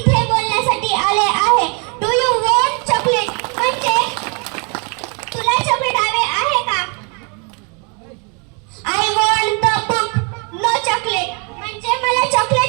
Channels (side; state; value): left; quieter; 34.9 dB